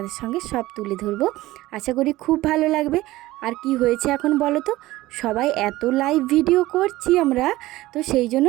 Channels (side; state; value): left; quieter; 17.6 dB